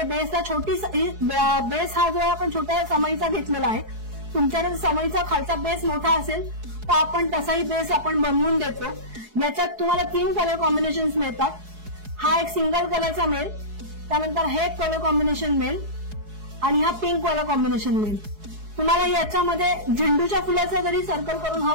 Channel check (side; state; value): left; late; 4.7 ms